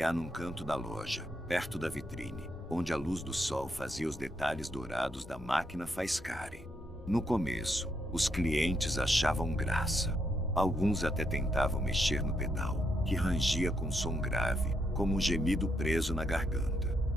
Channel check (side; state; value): both; normal; correlation 0.78